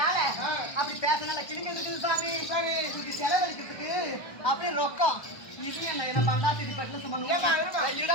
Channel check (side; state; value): right; late; 1.2 ms